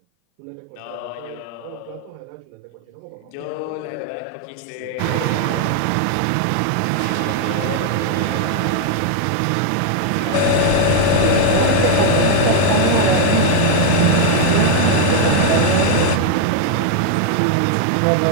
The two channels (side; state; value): both; different; correlation 0.00